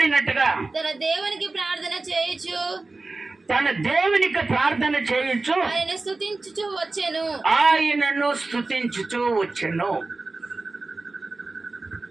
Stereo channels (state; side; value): quieter; left; 3.4 dB